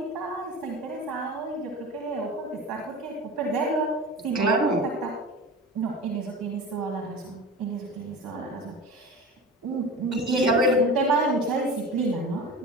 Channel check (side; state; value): both; normal; correlation 0.33